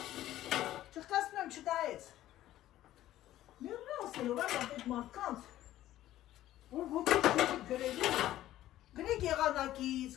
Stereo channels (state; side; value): quieter; right; 13.9 dB